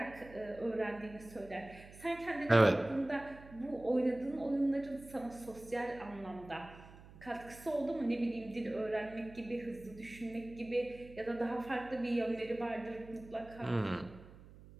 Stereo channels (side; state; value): right; noise; hum, 19 dB below the sound